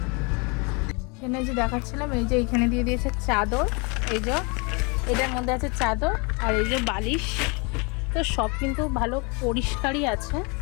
এখানে যে দেখাচ্ছিলাম, এই যে এইখানে দিয়ে দিয়েছে চাদর, এই যে এটার মধ্যে আছে চাদর, আর এই যে বালিশ, তো সব কিন্তু ভালো পরিষ্কারই আছে।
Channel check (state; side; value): quieter; right; 31.2 dB